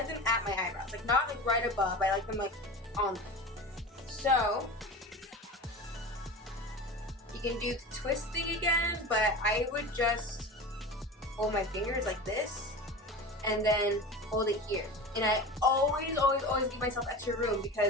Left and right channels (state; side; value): normal; both; correlation 0.30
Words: them at my eyebrows, like not like right above. I like them like on them. So you can do the twist thing again, but I would just hold my fingers like this and then hold it here. And I always give myself extra room,